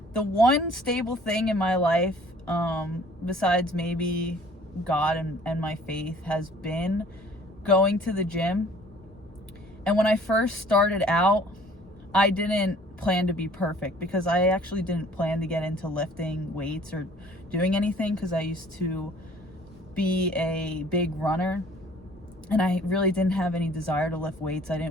the one stable thing in my life, besides maybe God and my faith, has been going to the gym. And when I first started out, I didn't plan to be perfect, because I actually didn't plan to get into lifting weights or doing anything, because I used to be a big runner and I really didn't have any desire to lift weights. I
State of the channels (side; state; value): both; normal; correlation 0.53